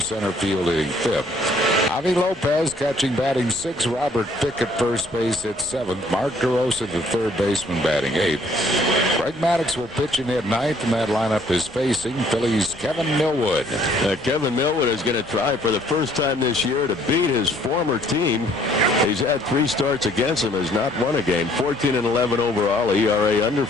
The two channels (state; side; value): normal; both; correlation 0.61